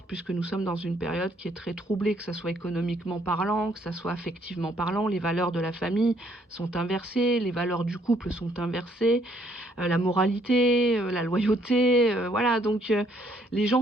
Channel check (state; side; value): normal; both; correlation 0.67